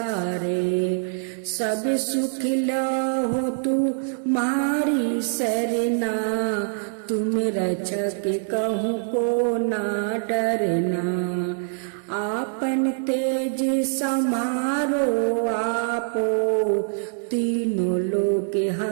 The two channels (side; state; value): left; silent; digital silence